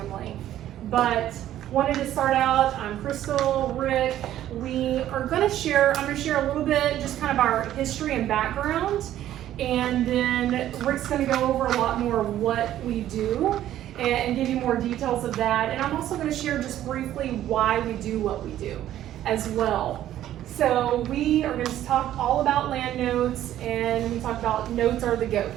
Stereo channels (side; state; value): left; quieter; 12.4 dB